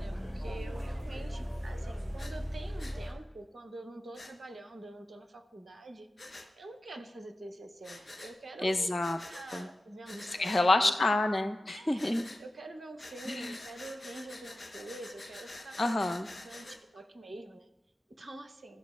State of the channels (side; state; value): both; normal; correlation 0.94